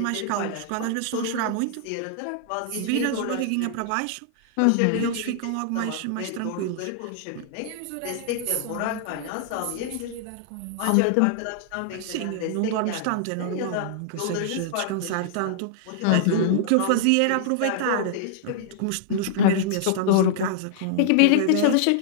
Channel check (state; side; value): different; both; correlation -0.01